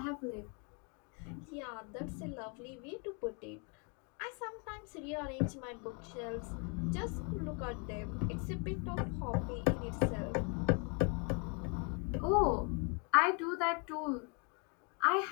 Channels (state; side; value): quieter; right; 36.1 dB